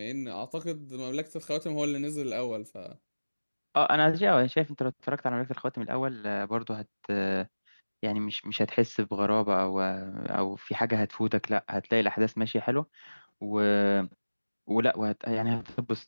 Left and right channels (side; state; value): both; inverted; correlation -1.00